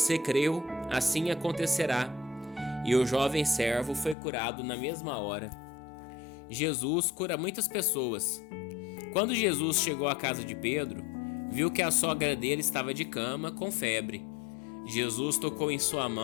creu, assim acontecerá. E o jovem servo foi curado na mesma hora. Jesus cura muitas pessoas. Quando Jesus chegou à casa de Pedro, viu que a sogra dele estava de cama, com febre. Jesus tocou em sua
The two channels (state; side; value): drops out; right; at 4.2 s